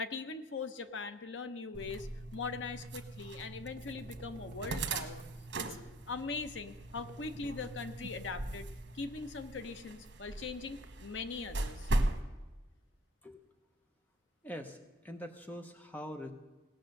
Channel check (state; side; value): normal; both; correlation 0.54